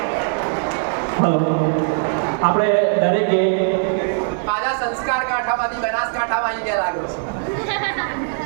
આપણે દરેકે પાછા સંસ્કાર કાંઠામાંથી બનાસકાંઠામાં આવી ગયા લાગ્યો છે.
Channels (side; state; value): left; silent; 64 dB below the other